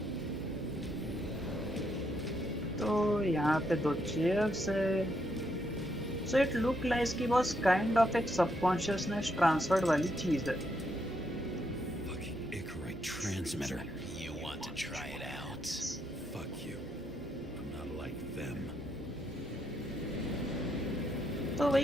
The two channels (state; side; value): normal; both; correlation 0.77